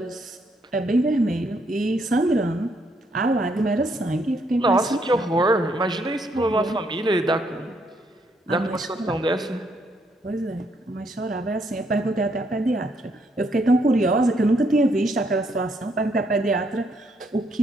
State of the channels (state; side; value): normal; both; correlation 0.73